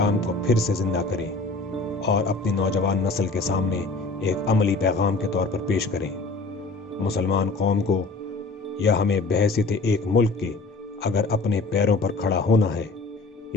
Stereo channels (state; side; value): quieter; right; 3.5 dB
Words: کو پھر سے زندہ کریں اور اپنی نوجوان نسل کے سامنے ایک عملی پیغام کے طور پر پیش کریں۔ مسلمان قوم کو یا ہمیں بحیثیت ایک ملک کے اگر اپنے پیروں پر کھڑا ہونا ہے،